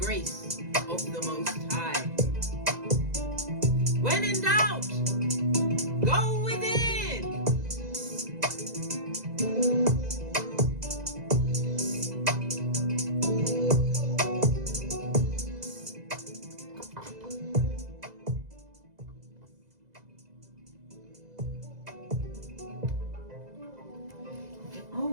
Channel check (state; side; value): late; left; 2.0 ms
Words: of the Most High. When in doubt, go within.